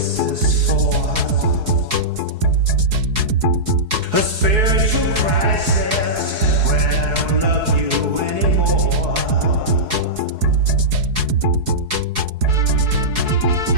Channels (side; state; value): left; late; 4.7 ms